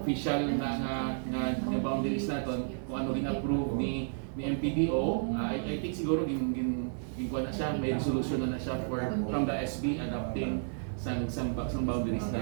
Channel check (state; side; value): silent; left; 57 dB below the other